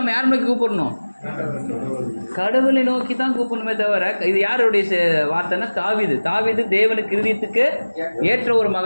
யாரை நோக்கி கூப்பிடணும்? கடவுளை நோக்கி தான் கூப்பிடணுமே தவிர. இது யாருடைய வார்த்தைன்னா தாவீது தேவனுக்கு இருதயத்துக்கு ஏற்ற ஒரு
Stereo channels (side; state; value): both; inverted; correlation -1.00